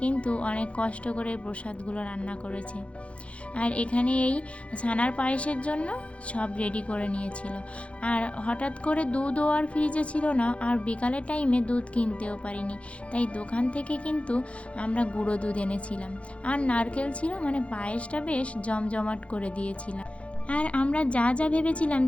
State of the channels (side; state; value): right; late; 0.062 ms